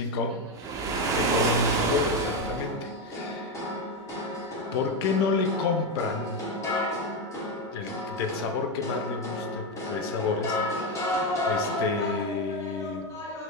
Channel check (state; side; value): normal; both; correlation 0.10